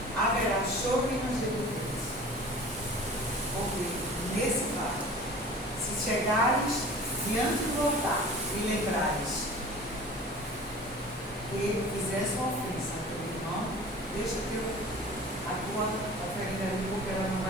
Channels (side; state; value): both; normal; correlation 0.42